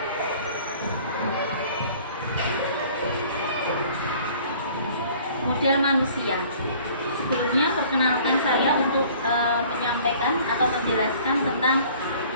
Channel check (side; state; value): both; inverted; correlation -0.52